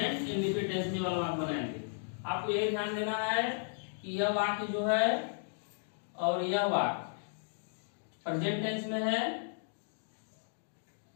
इंडिफिनिट टेंस में वाला वाक्य बनाएंगे। आपको यही ध्यान देना है कि यह वाक्य जो है और यह वाक्य प्रेजेंट टेंस में है,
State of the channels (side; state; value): right; silent; digital silence